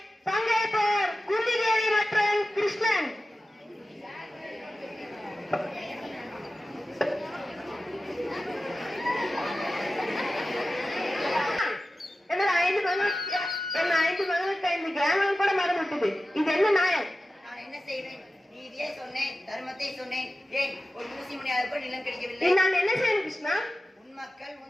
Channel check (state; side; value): normal; both; correlation 0.94